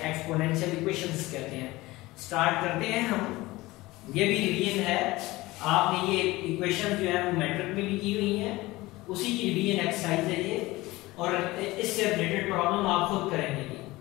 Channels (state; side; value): quieter; right; 19.8 dB